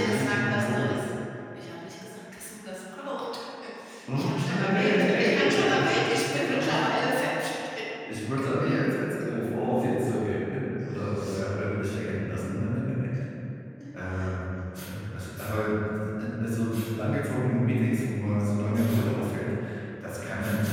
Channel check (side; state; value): both; identical; correlation 1.00